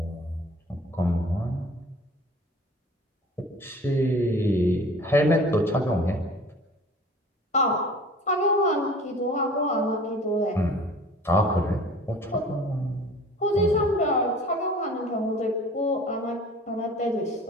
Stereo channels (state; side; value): normal; both; correlation 0.45